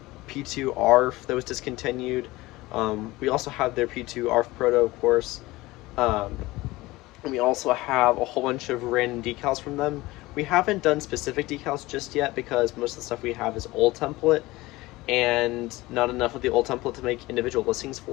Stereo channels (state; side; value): quieter; right; 19.8 dB